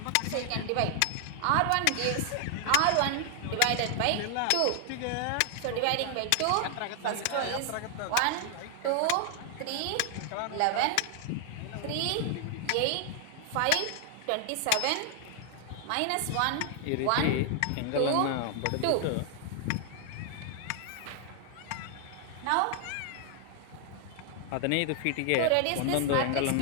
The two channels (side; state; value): both; different; correlation 0.00